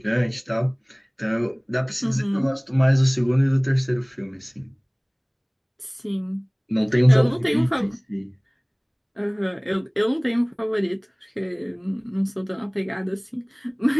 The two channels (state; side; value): identical; both; correlation 1.00